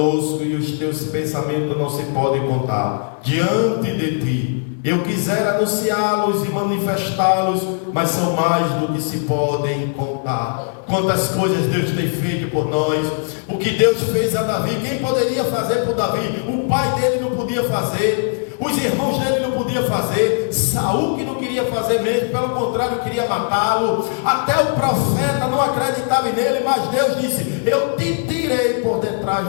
e os teus pensamentos não se podem contar diante de ti. Eu quisera anunciá-los e manifestá-los, mas são mais do que se podem contar. Quantas coisas Deus tem feito por nós. O que Deus fez a Davi, quem poderia fazer por Davi? O pai dele não podia fazer, os irmãos dele não podiam fazer, Saul que não queria fazer mesmo, pelo contrário queria matá-lo, até o profeta não acreditava nele, mas Deus disse: eu te tirei por detrás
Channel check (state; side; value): silent; right; 66 dB below the other